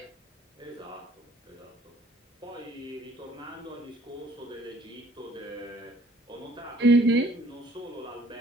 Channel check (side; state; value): both; normal; correlation 0.57